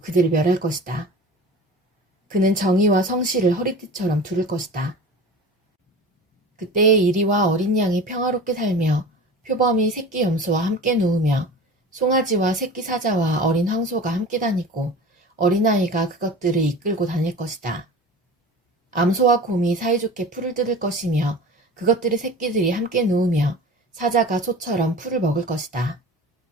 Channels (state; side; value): normal; both; correlation 0.37